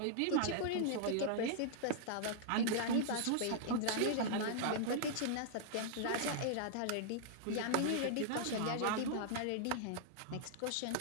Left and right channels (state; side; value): different; both; correlation -0.01